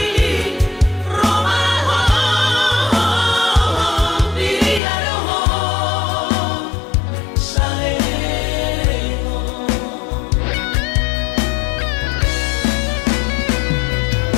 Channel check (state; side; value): drops out; right; at 4.8 s